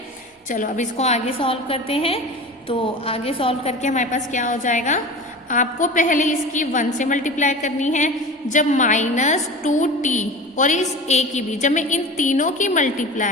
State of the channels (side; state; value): both; normal; correlation 0.33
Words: चलो अब इसको आगे सॉल्व करते हैं, तो आगे सॉल्व करके हमारे पास क्या हो जाएगा, आपको पहले इसकी 1 से मल्टीप्लाई करनी है, जब माइनस 2t और इस a की भी, जब मैं इन तीनों की